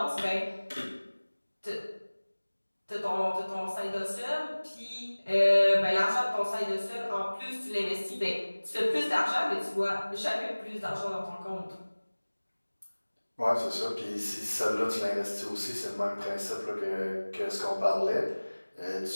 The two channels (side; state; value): both; inverted; correlation -1.00